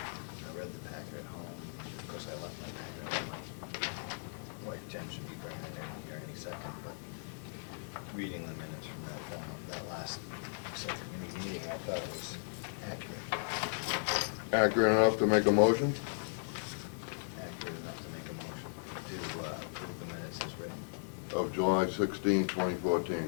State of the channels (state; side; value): silent; right; 53 dB below the other